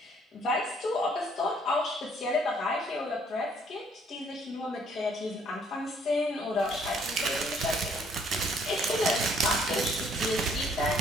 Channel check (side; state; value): both; normal; correlation 0.63